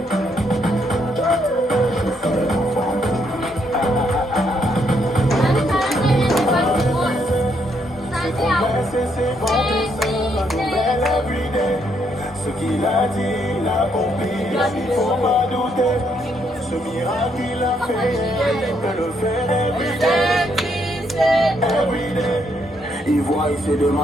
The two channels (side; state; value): both; normal; correlation 0.74